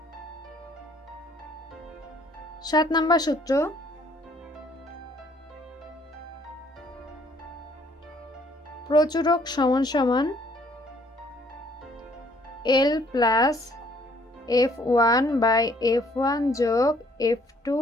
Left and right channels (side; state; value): both; normal; correlation 0.63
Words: 7 নম্বর সূত্র, প্রচুরক সমান সমান L plus F1 by F1 যোগ F2